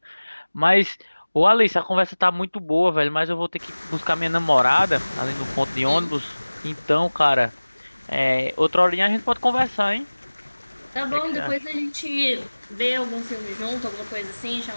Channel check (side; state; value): both; inverted; correlation -1.00